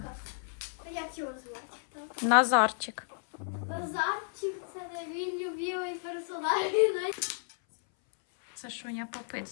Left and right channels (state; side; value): silent; right; 56 dB below the other